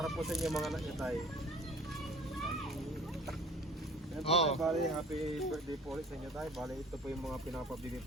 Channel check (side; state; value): both; normal; correlation 0.48